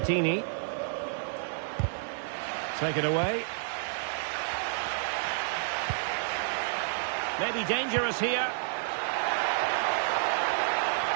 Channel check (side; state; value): left; silent; digital silence